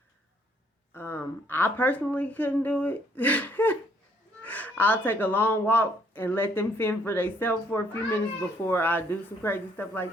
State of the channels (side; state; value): both; normal; correlation 0.66